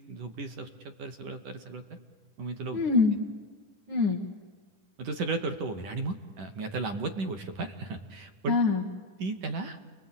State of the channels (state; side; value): late; left; 10 ms